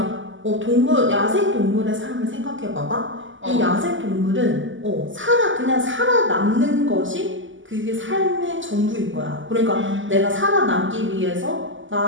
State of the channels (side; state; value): left; late; 0.56 ms